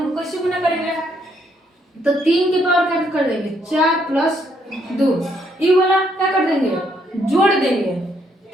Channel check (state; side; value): normal; both; correlation 0.72